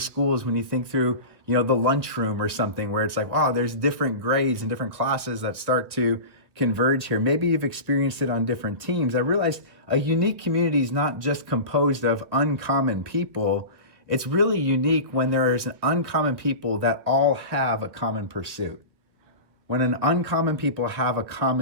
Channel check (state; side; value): late; left; 1.9 ms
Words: when you think through, the lunchroom or something, where it's like, wow, there's different grades and different classes that start to converge here. Maybe you've experienced it on different teams. I realized a unique community is not just composed of uncommon people. It's really unique when there is an uncommon people that all have a common pursuit. When an uncommon people have a